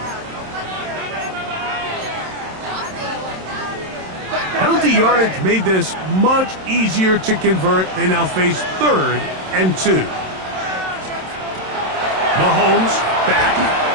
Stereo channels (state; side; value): late; left; 27 ms